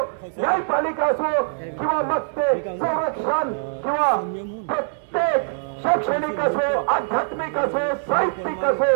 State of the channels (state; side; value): silent; left; digital silence